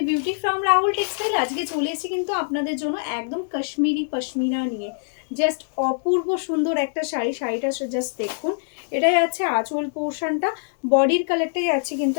beauty from Rahul textile. আজকে চলে এসেছি কিন্তু আপনাদের জন্য একদম কাশ্মীরি পশমিনা নিয়ে। জাস্ট অপূর্ব সুন্দর একটা শাড়ি। শাড়িটা জাস্ট দেখুন, এটাই আছে আঁচল পোর্শনটা। বডির কালারটাই আছে কিন্তু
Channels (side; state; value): right; silent; 63 dB below the other